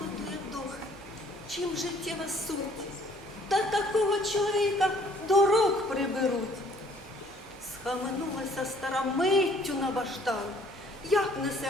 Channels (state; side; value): normal; both; correlation 0.59